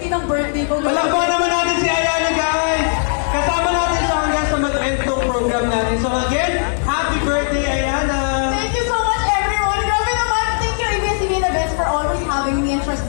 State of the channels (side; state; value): right; silent; digital silence